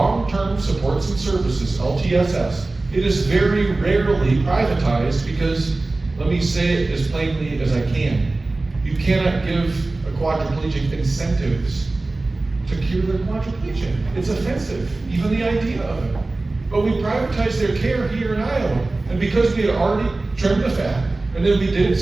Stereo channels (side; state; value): left; quieter; 3.2 dB